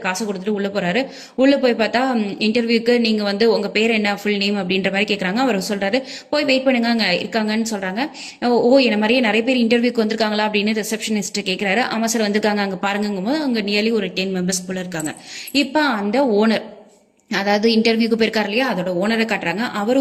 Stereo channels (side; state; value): both; identical; correlation 1.00